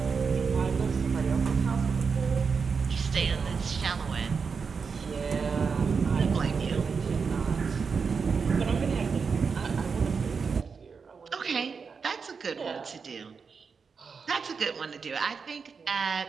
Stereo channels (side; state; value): left; quieter; 5.5 dB